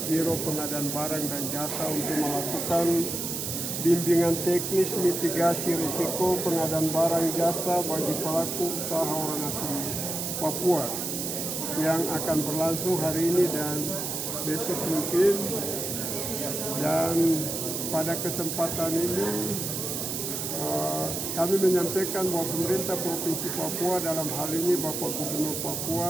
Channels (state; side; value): noise; right; hiss, 3 dB below the sound